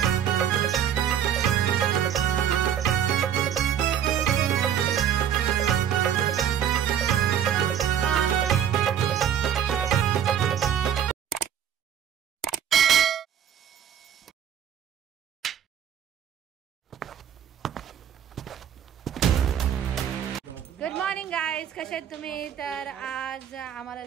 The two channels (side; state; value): left; quieter; 9.4 dB